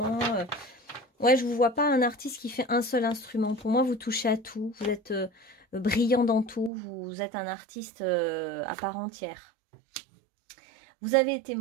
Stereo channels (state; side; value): drops out; left; at 6.7 s